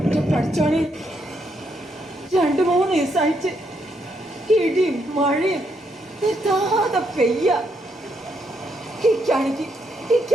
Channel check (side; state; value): both; normal; correlation 0.77